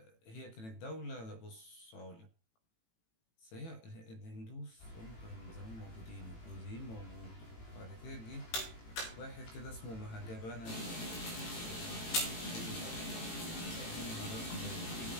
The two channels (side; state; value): right; late; 18 ms